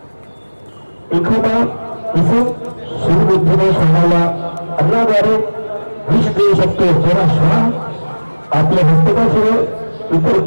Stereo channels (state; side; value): inverted; both; correlation -1.00